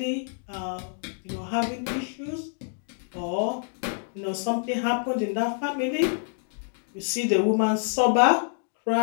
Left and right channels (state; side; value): silent; right; 59 dB below the other